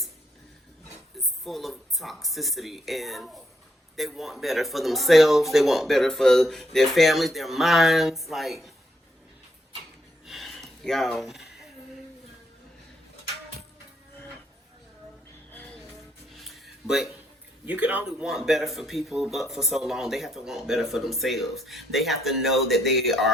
full of toxicity, and they want better for themselves, they want better for their families, their minds. Like, y'all, but you can only want better for people, but for so long. They have to want better for themselves. They have to know that they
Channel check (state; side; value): normal; both; correlation 0.74